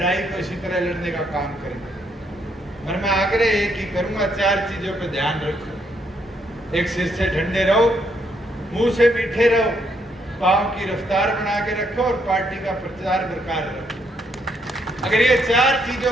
को इसी तरह लड़ने का काम करेंगे। और मैं आग्रह एक ही करूंगा, 4 चीजों पर ध्यान रखो। एक, सिर से ठंडे रहो, मुंह से मीठे रहो, पांव की रफ्तार बना के रखो और पार्टी का प्रचार बरकरार रखो। अगर ये 4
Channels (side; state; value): both; normal; correlation 0.73